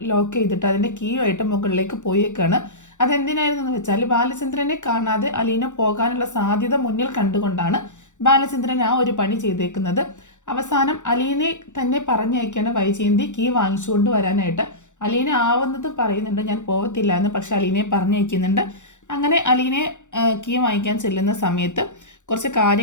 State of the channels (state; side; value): late; right; 0.85 ms